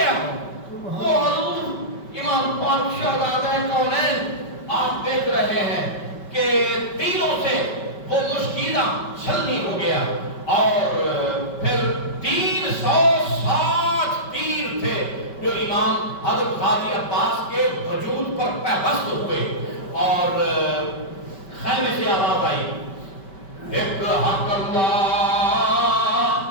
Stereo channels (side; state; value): right; late; 5.2 ms